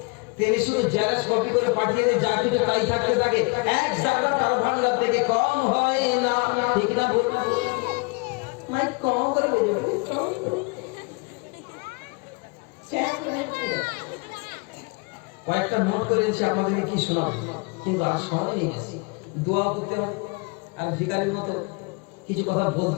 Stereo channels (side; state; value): right; quieter; 30.0 dB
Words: তিনি শুধু জেলাস কপি করে পাঠিয়ে দিয়ে যা কিছু তাই থাকতে থাকে, এক জায়গা তার ভান্ডার থেকে কম হয় না। ঠিক না ভুল? মাইক কম করে বেজে কয়েকটা নোট করে দিচ্ছে, আমাদেরকে কি শোনাবে, কিন্তু আর সময় নেই। দোয়া করতে হবে, আর ভিখারির মতো কিছু কথা